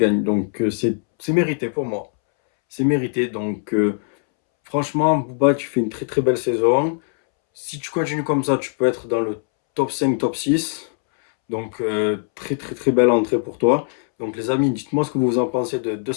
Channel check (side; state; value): right; silent; 65 dB below the other